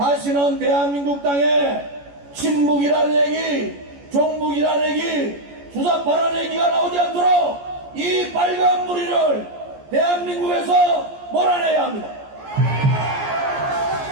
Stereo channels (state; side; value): late; left; 14 ms